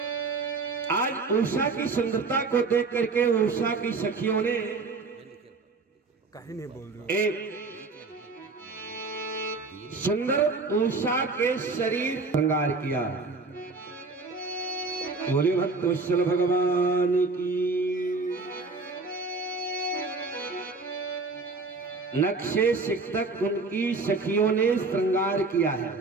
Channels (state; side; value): quieter; left; 3.9 dB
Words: आज उषा की सुंदरता को देख करके उषा की सखियों ने एक सुंदर उषा के शरीर श्रृंगार किया। बोले भक्त वत्सल भगवान की। नक्शे सिक्तक उनकी सखियों ने श्रृंगार किया है।